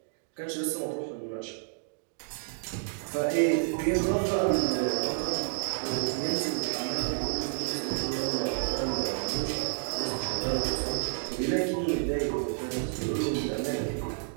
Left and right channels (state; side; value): silent; left; digital silence